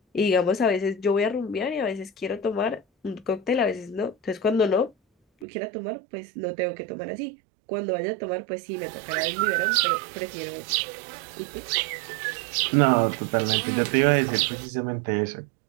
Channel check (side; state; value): left; drops out; at 5.5 s